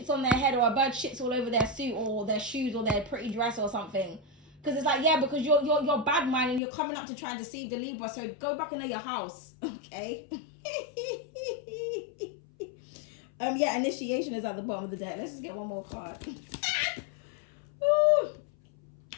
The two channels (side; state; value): right; drops out; at 6.6 s